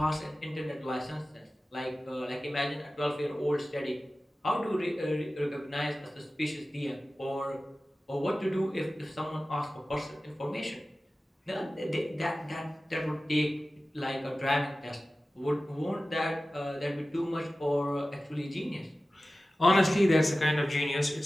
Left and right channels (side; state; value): both; normal; correlation 0.96